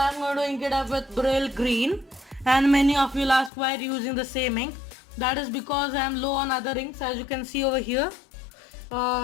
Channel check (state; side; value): drops out; right; at 3.5 s